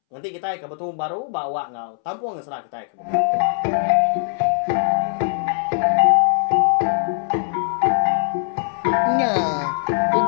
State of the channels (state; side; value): silent; right; 65 dB below the other